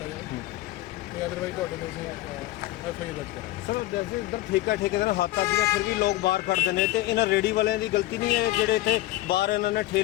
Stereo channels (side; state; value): right; quieter; 17.1 dB